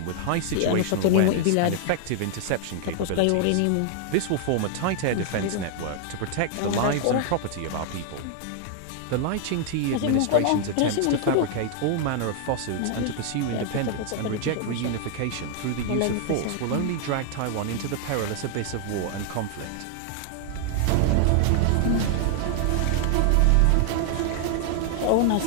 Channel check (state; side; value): different; both; correlation 0.00